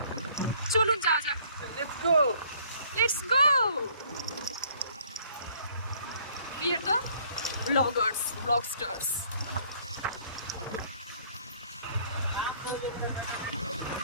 চলুন যাওয়া যাক। Let's go! We are the vlogsters.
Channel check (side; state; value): both; inverted; correlation -0.59